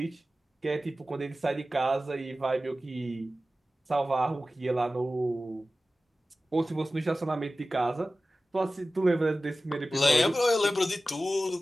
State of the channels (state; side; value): normal; both; correlation 0.95